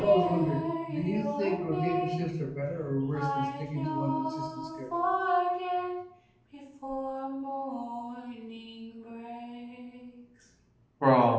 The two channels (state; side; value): identical; both; correlation 1.00